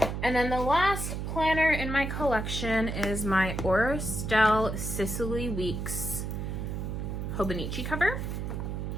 And then the last planner in my collection is my Stile Sicily Weeks Hobonichi cover.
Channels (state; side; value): noise; right; hum, 4 dB below the sound